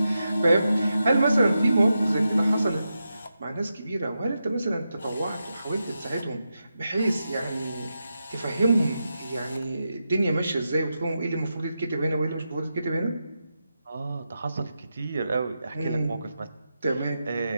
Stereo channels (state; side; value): inverted; both; correlation -0.88